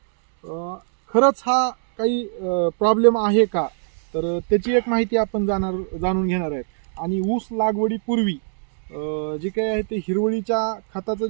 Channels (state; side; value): silent; left; digital silence